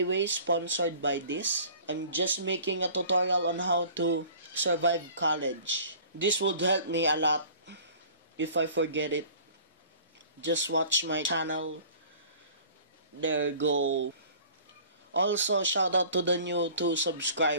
way sponsored by this. I'm just making a tutorial on how to survive college. This would help me a lot. If I forget it, just watch my channel. There you go. Also, shout out to the new 2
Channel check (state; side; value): inverted; both; correlation -0.48